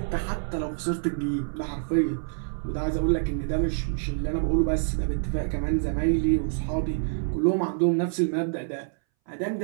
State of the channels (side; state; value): left; silent; 60 dB below the other